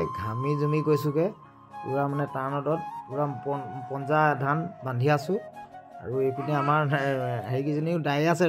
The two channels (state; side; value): identical; both; correlation 1.00